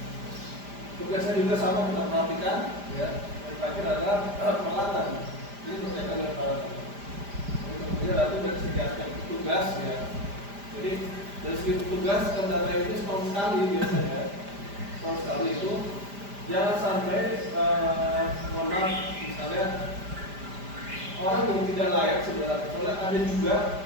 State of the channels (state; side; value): late; left; 5.0 ms